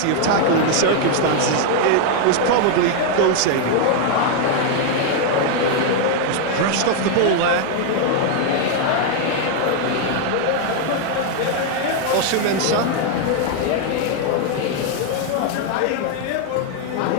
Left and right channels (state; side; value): different; both; correlation 0.00